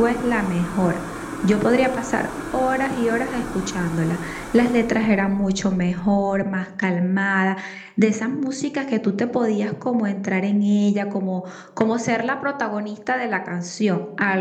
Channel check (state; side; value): identical; both; correlation 1.00